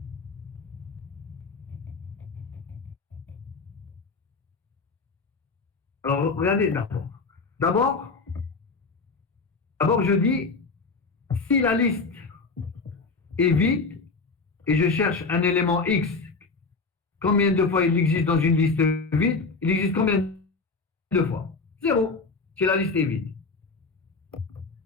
Alors, regardez d'abord. D'abord, je dis, si la liste est vide et je cherche un élément X, combien de fois il existe dans une liste vide? Il existe combien de fois? 0, si la liste est vide.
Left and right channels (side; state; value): right; quieter; 4.2 dB